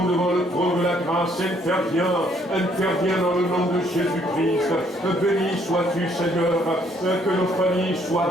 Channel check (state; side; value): normal; both; correlation 0.66